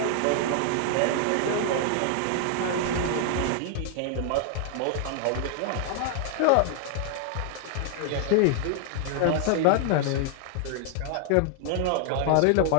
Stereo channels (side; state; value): both; different; correlation 0.00